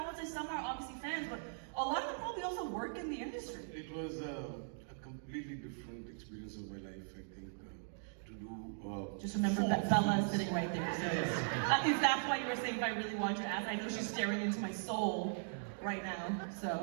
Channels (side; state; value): left; silent; digital silence